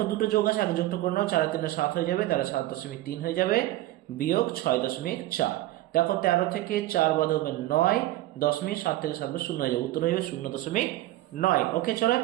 দুটো যোগ আছে, আগে যোগটা করে নাও, 4 আর 3 7 হয়ে যাবে, তাহলে 7.3 হয়ে যাবে বিয়োগ 6.4। দেখো 13 থেকে 4 বাদ হবে 9, 7 থেকে 7 বাদ 0 হয়ে যাবে, উত্তর হয়ে যাবে 0.9। ওকে, চলো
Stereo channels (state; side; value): quieter; left; 16.1 dB